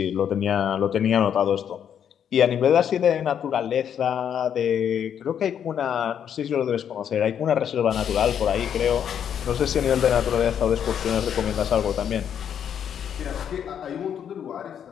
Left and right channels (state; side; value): quieter; right; 8.8 dB